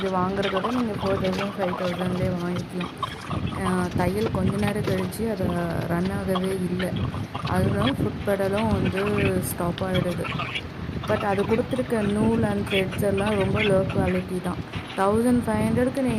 வாங்குறதோட நீங்கள் 4000 5000லேயே வாங்கிக்கலாம். தையல் கொஞ்ச நேரம் கழித்து அதை ரன் ஆகவே இல்லை. அதுதான் ஃபுட் பெடலும் வந்து ஸ்டாப் ஆகிடுது. பட் அது கொடுத்துருக்க நூல் அண்ட் த்ரெட்ஸ் எல்லாம் ரொம்ப லோ குவாலிட்டி தான். 1500க்கு நீ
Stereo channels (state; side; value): identical; both; correlation 1.00